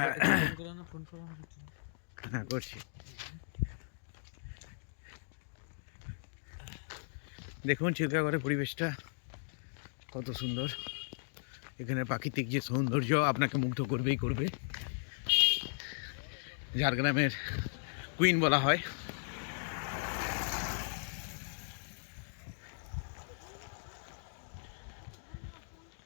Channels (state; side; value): silent; right; digital silence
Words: ফোন করো না। হ্যাঁ করছি। দেখুন চিল্কাগড়ের পরিবেশটা কত সুন্দর। এখানে প্রাকৃতিক যে সৌন্দর্য আপনাকে মুগ্ধ করবেই করবে। ঝাড়গ্রামের কুইন বলা হয়।